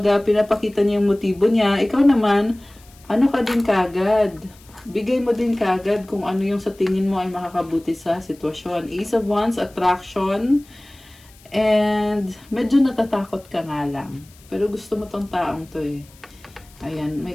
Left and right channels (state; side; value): noise; left; hiss, 26 dB below the sound